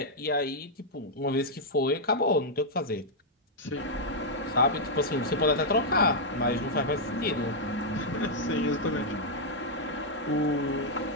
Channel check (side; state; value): both; normal; correlation -0.05